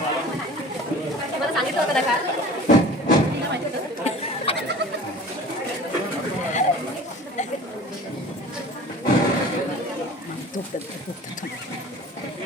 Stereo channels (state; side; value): normal; both; correlation 0.42